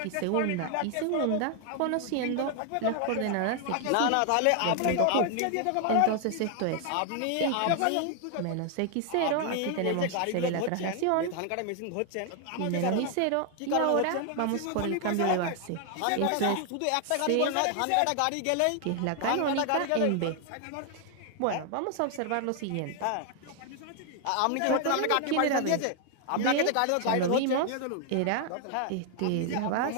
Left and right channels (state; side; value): different; both; correlation 0.00